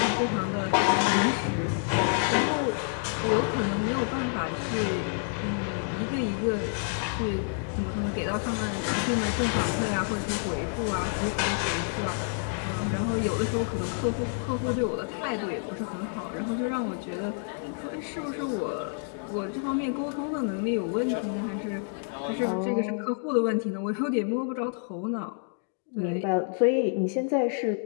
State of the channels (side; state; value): right; silent; 59 dB below the other